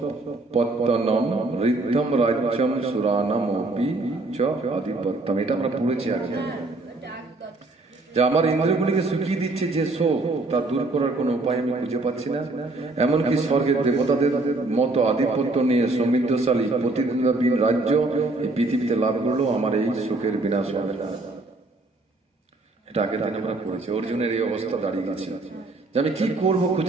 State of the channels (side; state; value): left; quieter; 3.1 dB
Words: ঋদ্ধম রাজ্যম সুরানামপি চ আধিপত্যম। এটা আমরা পড়েছি আগে, যে আমার ইন্দ্রিয়গুলিকে শুকিয়ে দিচ্ছে যে শোক, তা দূর করার কোনো উপায় আমি খুঁজে পাচ্ছি না। এমনকি স্বর্গের দেবতাদের মতো আধিপত্য নিয়ে সমৃদ্ধশালী প্রতিদিন রাজ্য এই পৃথিবীতে লাভ করলেও আমার এই সুখের বিনাশ হবে না। এটা আগের দিন আমরা পড়েছি। অর্জুনের এই অবস্থা দাঁড়িয়ে গেছে যে আমি কি করব